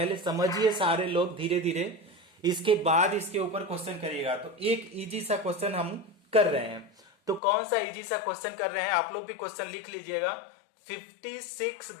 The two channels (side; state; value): right; drops out; at 7.4 s